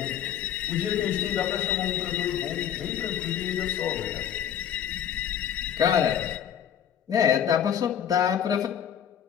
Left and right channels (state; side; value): quieter; right; 9.5 dB